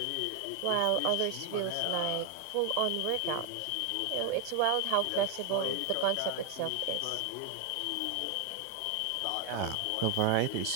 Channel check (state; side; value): different; both; correlation 0.01